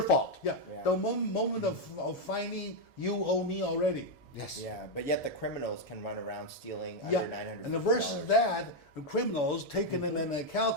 fault. the moment of finding you owe me already. Yes. Yeah, but yet the criminals can run around stealing Yeah, under $950. and versus that, the criminals taking in a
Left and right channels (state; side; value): late; right; 1.7 ms